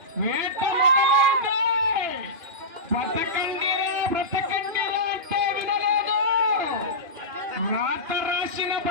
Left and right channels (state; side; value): late; left; 2.5 ms